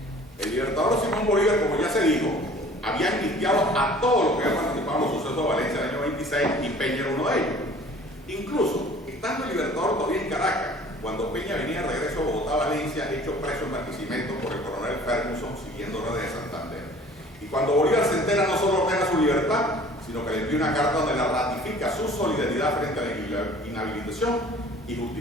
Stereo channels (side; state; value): both; normal; correlation 0.49